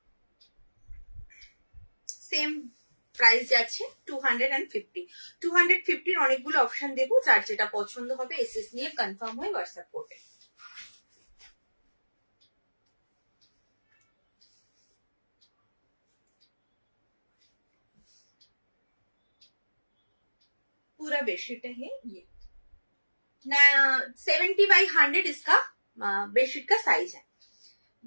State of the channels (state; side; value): inverted; both; correlation -1.00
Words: সেম প্রাইস যাচ্ছে 250। 250 অনেকগুলো অপশন দেবো, যার যেটা পছন্দ হবে এসএস নিয়ে কনফার্ম হয়ে হোয়াটসঅ্যাপ করবে। पूरा बेडशीट है ये ना, 70/100 इसका बेडशीट का साइज है,